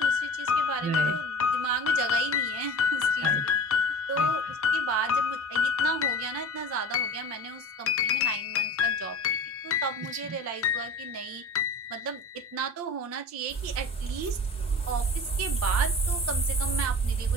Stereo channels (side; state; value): both; normal; correlation 0.36